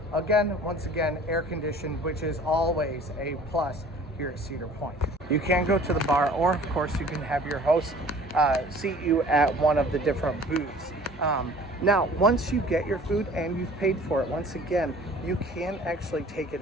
Again, once again, air conditioned, which is always a plus here at Cedar Point. You can go to the bar, or of course you can have your host seat you at one of the different booths. Now, once you get your food and you've paid for it, once again, you can actually take it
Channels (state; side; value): normal; both; correlation 0.48